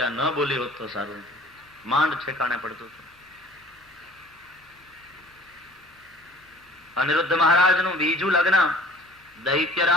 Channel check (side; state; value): both; normal; correlation 0.51